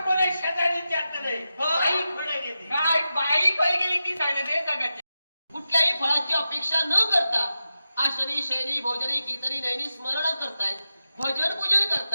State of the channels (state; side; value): inverted; both; correlation -0.91